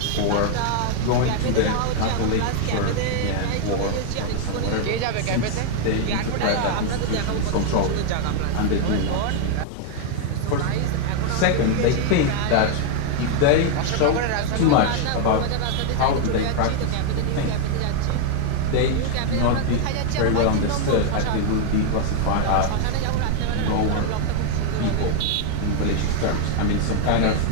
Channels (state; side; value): different; both; correlation 0.00